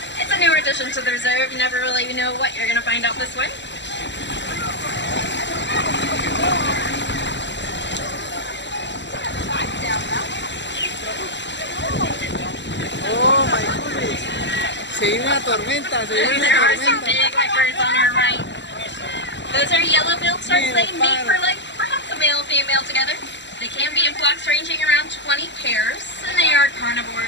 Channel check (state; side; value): late; right; 0.52 ms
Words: it's a newer addition to the reserve. You never really know what you're going to find out this way. Oh my goodness. Se viene una tormenta, se viene There una are some tormenta. big white birds on our right. Those are yellow-billed storks. They mate for like perhaps a male and female together. They can be in flocks ranging around 20 pairs, and they are